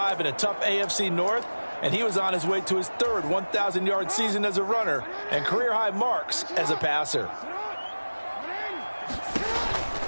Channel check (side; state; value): both; inverted; correlation -1.00